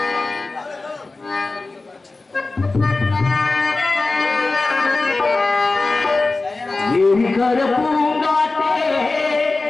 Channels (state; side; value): quieter; right; 3.5 dB